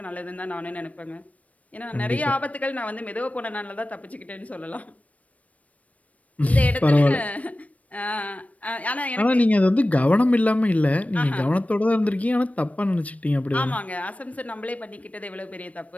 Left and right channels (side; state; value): right; late; 0.068 ms